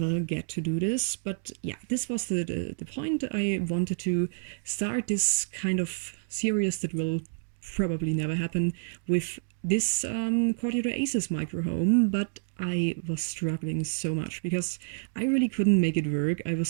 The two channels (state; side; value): silent; left; digital silence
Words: get to do this, but yeah, this was the point. I wanted to start this kind of series that will probably never happen with this Courtyard Oasis micro home, but I was struggling so much because I really couldn't make it work. I